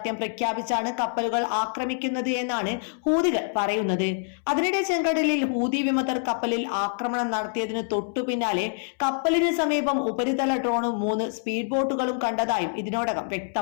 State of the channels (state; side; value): silent; right; 61 dB below the other